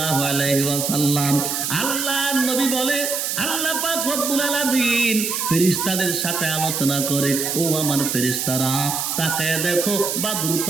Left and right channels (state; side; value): noise; right; hiss, 1 dB below the sound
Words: আলাইহি ওয়াসাল্লাম। আল্লাহর নবী বলে, আল্লাহ পাক রব্বুল আলামিন ফেরেশতাদের সাথে আলোচনা করে, ও আমার ফেরেশতারা তাকায় দেখো,